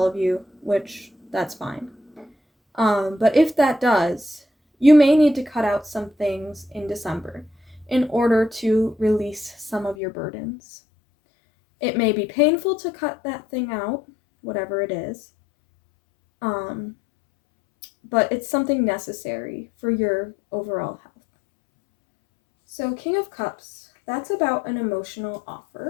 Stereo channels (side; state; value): right; drops out; at 10.0 s